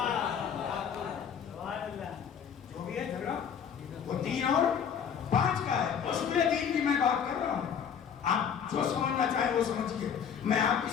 جو بھی ہے جھگڑا وہ 3 اور 5 کا ہے. اصول دین کی میں بات کر رہا ہوں, آپ جو سمجھنا چاہیں وہ سمجھیے, میں آپ کی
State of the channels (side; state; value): right; quieter; 7.7 dB